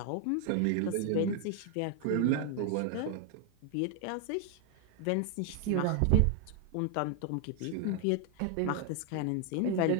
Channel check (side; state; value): both; different; correlation 0.00